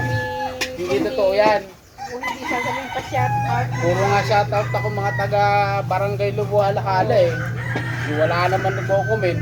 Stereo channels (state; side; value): identical; both; correlation 1.00